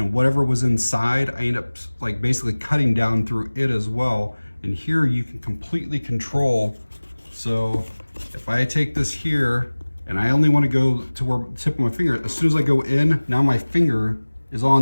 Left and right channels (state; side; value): inverted; both; correlation -1.00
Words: whatever was inside, I end up like basically cutting down through it as well. And here you can completely control. So if I take this here and I only want to go to where the tip of my finger, as soon as I go in, now my finger is